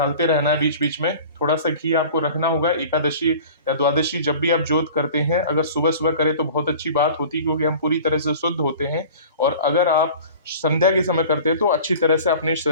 रहना है बीच बीच में। थोड़ा सा घी आपको रखना होगा। एकादशी या द्वादशी जब भी आप जोत करते हैं, अगर सुबह सुबह करें तो बहुत अच्छी बात होती है, क्योंकि हम पूरी तरह से शुद्ध होते हैं। और अगर आप संध्या के समय करते हैं तो अच्छी तरह से अपने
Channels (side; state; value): both; inverted; correlation -0.42